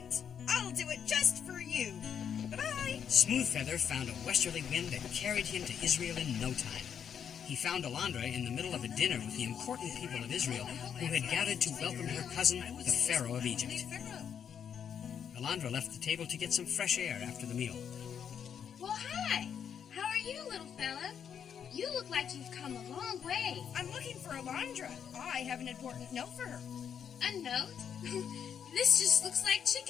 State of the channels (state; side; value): quieter; right; 8.0 dB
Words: I'll do it just for you. Bye-bye. Smoothfeather found a westerly wind that carried him to Israel in no time. He found Alondra in the middle of a dinner with the important people of Israel who had gathered to welcome her cousin, the Pharaoh of Egypt. Alondra left the table to get some fresh air after the meal. Well, hi. How are you, little fella? You look like you've come a long way. I'm looking for Alondra. I have an important note for her. A note? This just looks like